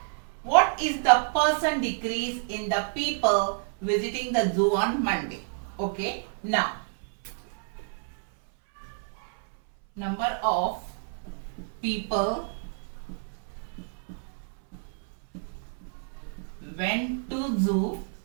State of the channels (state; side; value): silent; left; 58 dB below the other